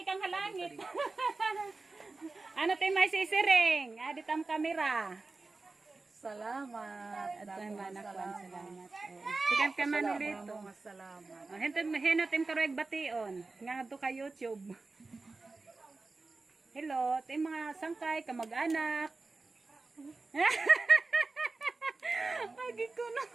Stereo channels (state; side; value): quieter; left; 3.6 dB